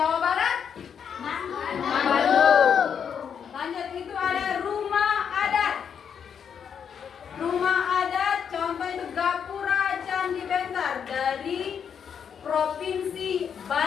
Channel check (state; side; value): quieter; right; 7.5 dB